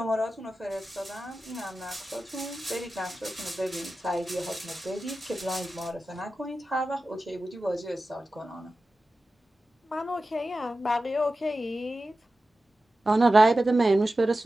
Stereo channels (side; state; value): both; normal; correlation 0.94